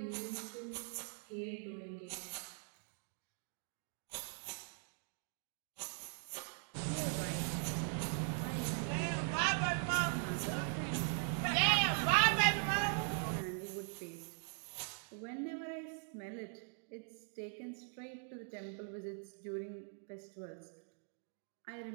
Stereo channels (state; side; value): silent; left; 50 dB below the other